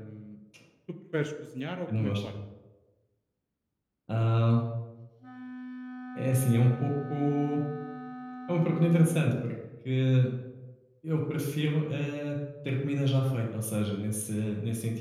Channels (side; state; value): both; identical; correlation 1.00